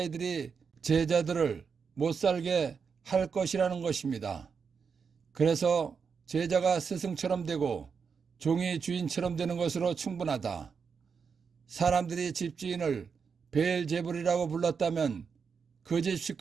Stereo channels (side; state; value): left; quieter; 6.0 dB